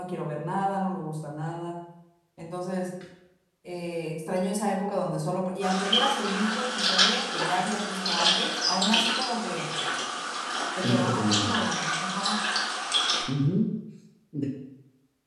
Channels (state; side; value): identical; both; correlation 1.00